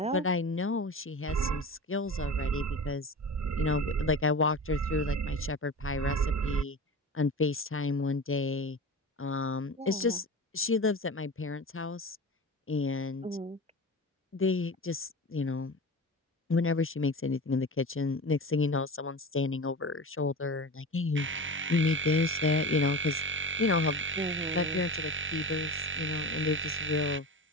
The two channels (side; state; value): both; normal; correlation 0.31